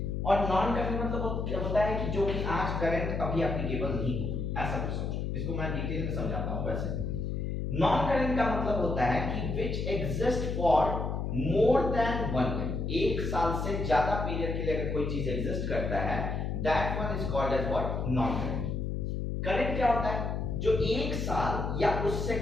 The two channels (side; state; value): left; noise; hum, 2 dB below the sound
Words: और नॉन करंट मतलब क्या होता है कि जो कि आज करंट अभी एप्लीकेबल नहीं हो, ऐसा कुछ समझो। इसको मैं डिटेल में समझाता हूं। वैसे नॉन करंट का मतलब होता है कि which exist for more than 1 year, एक साल से ज्यादा पीरियड के लिए अगर कोई चीज एग्जिस्ट करता है, that one is called as what, non current. Current क्या होता है, जो एक साल या उससे